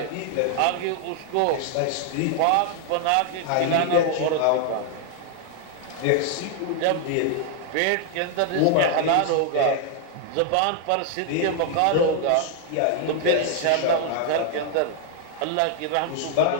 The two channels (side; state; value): both; different; correlation 0.00